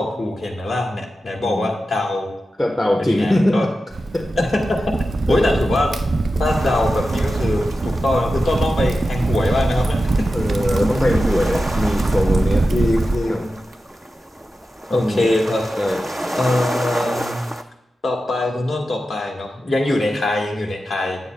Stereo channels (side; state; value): both; normal; correlation 0.92